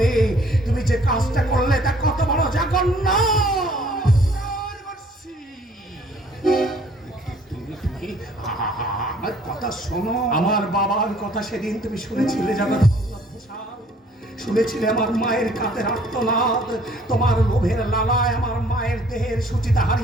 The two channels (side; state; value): both; normal; correlation 0.58